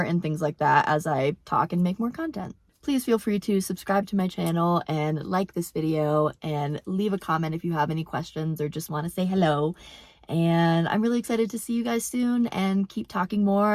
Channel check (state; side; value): identical; both; correlation 1.00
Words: and things like that as I talk and make more content. Please feel free to subscribe to my channel and like this video and leave a comment if you have any questions or just want to say hello. And I'm really excited to see you guys soon and keep talking